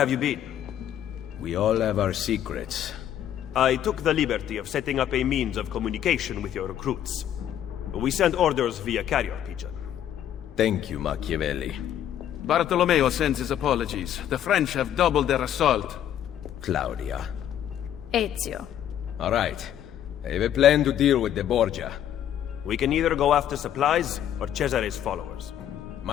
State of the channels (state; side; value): quieter; right; 10.6 dB